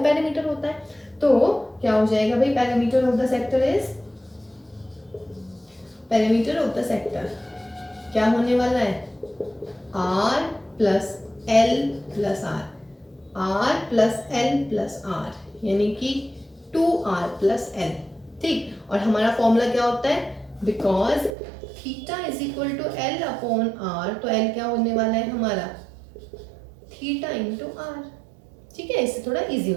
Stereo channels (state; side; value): drops out; left; at 21.3 s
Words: पेरीमीटर होता है। तो क्या हो जाएगा भाई, perimeter of the sector is, perimeter of the sector क्या होने वाला है, R plus L plus R, R plus L plus R, यानी कि 2r प्लस एल, ठीक। और हमारा फॉर्मूला क्या होता है, because theta is equal to L upon R, तो एल क्या होने वाला है हमारा, थीटा इंटू आर, ठीक है। इससे थोड़ा इजी